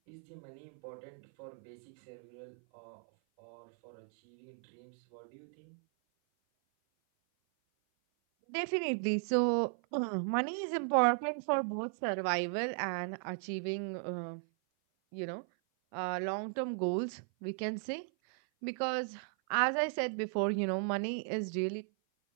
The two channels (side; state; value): left; silent; 53 dB below the other